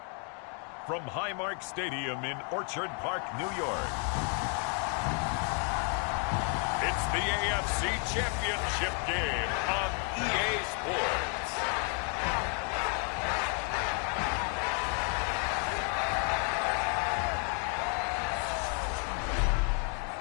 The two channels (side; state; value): right; quieter; 38.6 dB